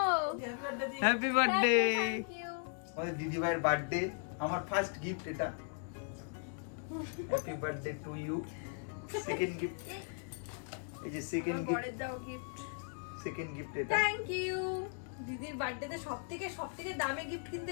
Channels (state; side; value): silent; right; 53 dB below the other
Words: Happy birthday. আমাদের দিদি ভাইয়ের বার্থডে, আমার ফার্স্ট গিফট এটা। Happy birthday to you. Second gift, এই যে সেকেন্ড গিফট, বড়ের দাও গিফট। সেকেন্ড গিফট এটা। Thank you. দিদির বার্থডেতে সবথেকে দামি গিফট কিন্তু